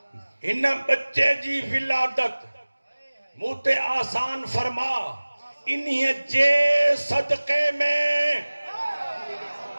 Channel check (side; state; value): both; inverted; correlation -1.00